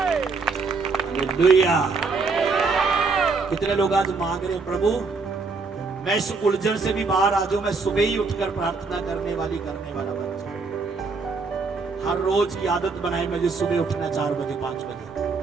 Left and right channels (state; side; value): quieter; left; 4.3 dB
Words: हालेलुया। कितने लोग आज मांग रहे, प्रभु मैं इस उलझन से भी बाहर आ जाऊं, मैं सुबह ही उठकर प्रार्थना करने वाला बन जाऊं। हर रोज की आदत बनाए मुझे सुबह उठना 4 बजे 5 बजे,